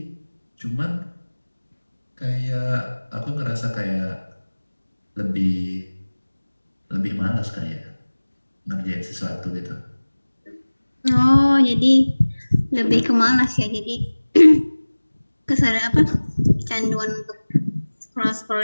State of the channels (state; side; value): inverted; both; correlation -1.00